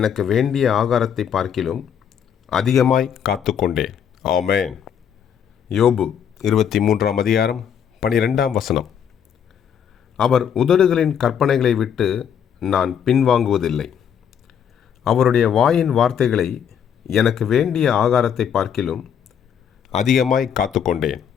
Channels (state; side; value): quieter; right; 8.2 dB